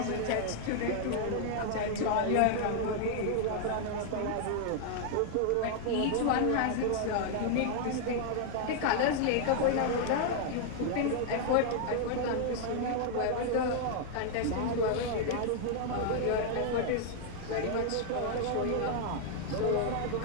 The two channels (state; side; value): different; both; correlation 0.00